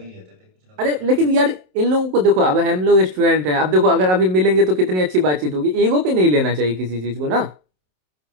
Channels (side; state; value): left; late; 27 ms